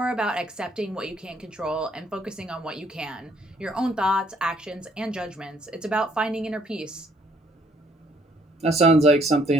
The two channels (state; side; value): normal; both; correlation 0.65